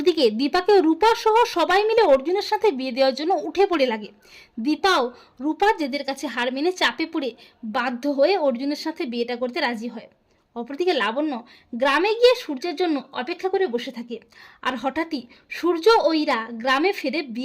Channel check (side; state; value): both; identical; correlation 1.00